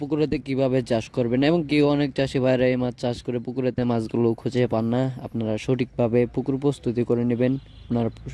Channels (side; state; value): both; identical; correlation 1.00